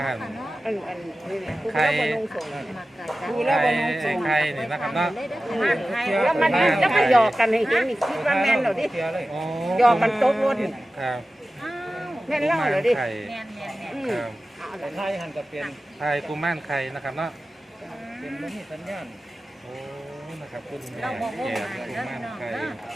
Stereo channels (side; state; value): both; normal; correlation 0.95